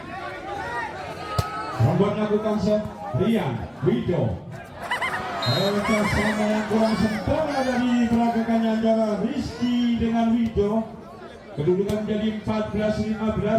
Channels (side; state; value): both; identical; correlation 1.00